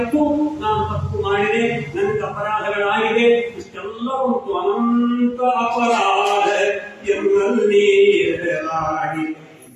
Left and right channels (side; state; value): both; identical; correlation 1.00